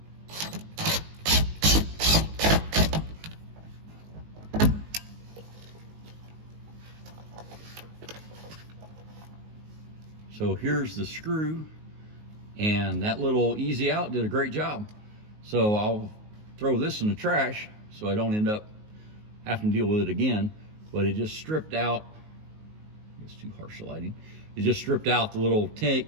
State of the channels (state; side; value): late; left; 19 ms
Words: So here's the screw, and that little easy out did a great job. So I'll throw this in the trash so I don't end up having to deal with it again, but it just stripped out, it's too harsh lighting. It just stripped out the little